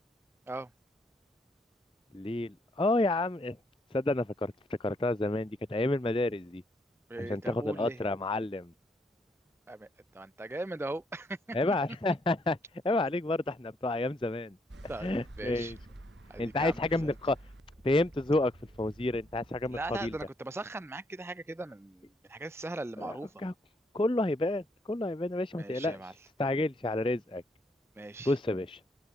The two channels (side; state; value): both; normal; correlation 0.72